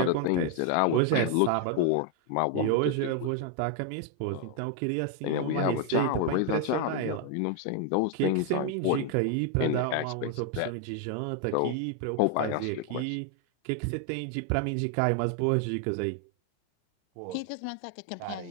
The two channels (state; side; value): different; both; correlation 0.01